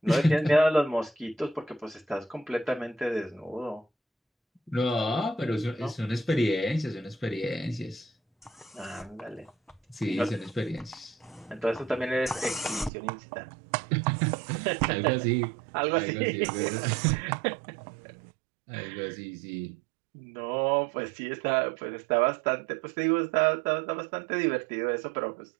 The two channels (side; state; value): left; drops out; at 12.9 s